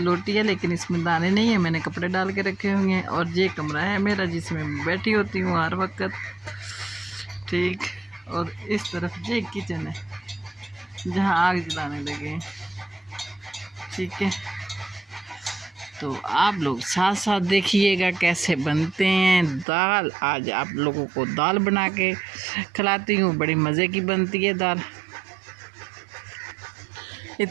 है, लेकिन इसमें दाने नहीं है, मैंने कपड़े डाल के रखे हुए हैं। और ये कमरा है मेरा जिसमें मैं बैठी होती हूँ हर वक्त, ठीक। और इस तरफ ये किचन है जहाँ आग जलाने लगे हैं, ठीक है। तो आप लोग साथ साथ देखिएगा कैसे बनते हैं दाल। आज आप लोगों को दाल बना के खिलाती हूँ, बड़ी मज़े की बनती है दाल।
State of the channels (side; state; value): left; drops out; at 19.7 s